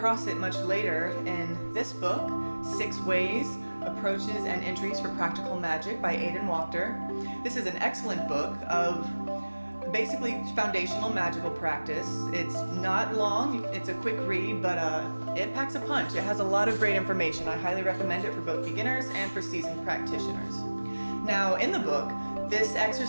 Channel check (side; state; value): both; inverted; correlation -1.00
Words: it much later in this book, 6 Ways, Approaches, and Entries for Practical Magic by Aidan Wachter. This is an excellent book of basically foundational magical practice. It's not long, it's a quick read, but it packs a punch. It has a lot of great information. I highly recommend it for both beginners and for seasoned practitioners. Now, in the book, this